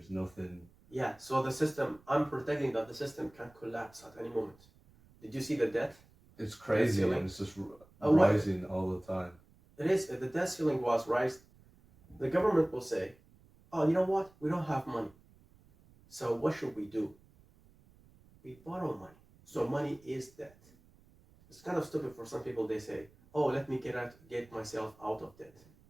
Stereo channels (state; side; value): noise; right; rumble, 28 dB below the sound